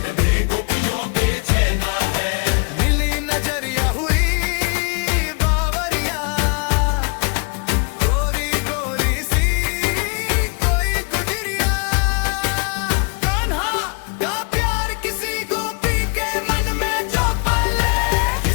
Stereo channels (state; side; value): quieter; right; 35.5 dB